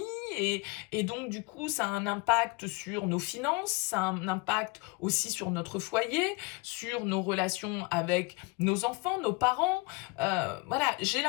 et donc du coup ça a un impact sur nos finances, ça a un impact aussi sur notre foyer, sur nos relations avec nos enfants, nos parents. Voilà, j'ai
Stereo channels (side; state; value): right; quieter; 26.3 dB